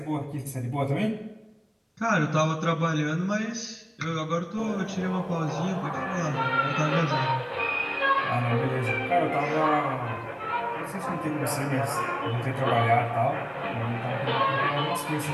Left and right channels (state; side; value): identical; both; correlation 1.00